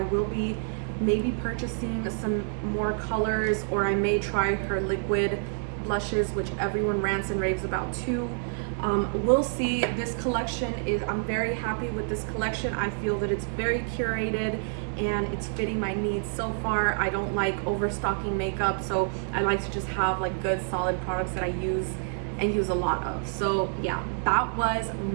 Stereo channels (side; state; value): left; silent; 59 dB below the other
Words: will be maybe purchasing some more colors, or I may try her liquid blushes, which everyone rants and raves about too. We'll see. This collection I'm very happy with this collection. I feel that it's very curated and it's fitting my needs so far. I don't like overstocking makeup, so I like to just have like good solid products that I use and use a lot of. So yeah, that was